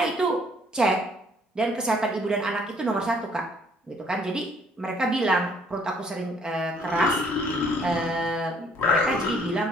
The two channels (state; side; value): normal; both; correlation 0.62